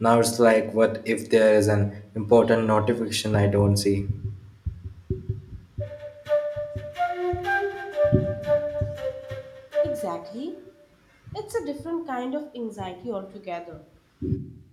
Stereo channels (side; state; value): both; identical; correlation 1.00